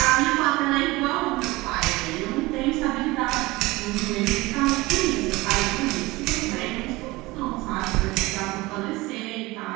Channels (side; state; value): left; quieter; 21.1 dB